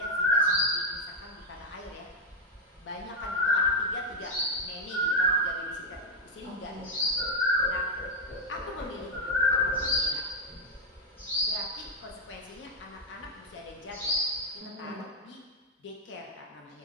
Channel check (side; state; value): both; normal; correlation 0.03